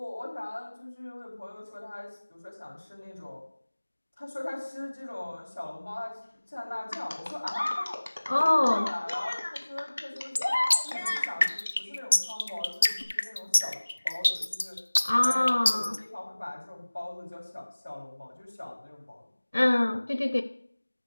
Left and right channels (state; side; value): inverted; both; correlation -1.00